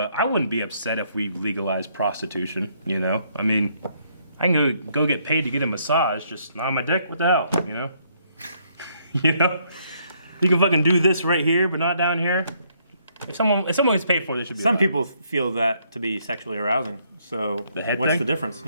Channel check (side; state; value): both; inverted; correlation -0.70